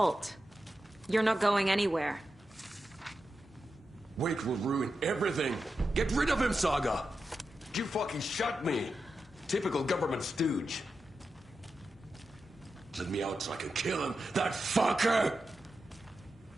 You're not going anywhere. Wake will ruin everything. Get rid of him, Saga! You fucking shot me. Typical government stooge. Let me out so I can kill him, that fucker!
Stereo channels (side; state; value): both; normal; correlation 0.89